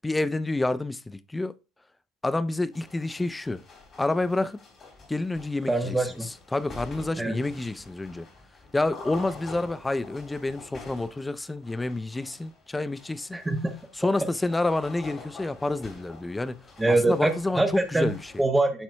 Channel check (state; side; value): normal; both; correlation 0.92